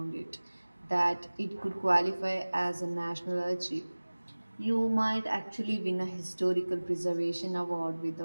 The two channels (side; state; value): both; inverted; correlation -1.00